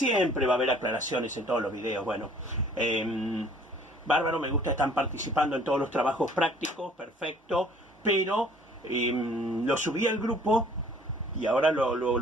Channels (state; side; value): normal; both; correlation 0.55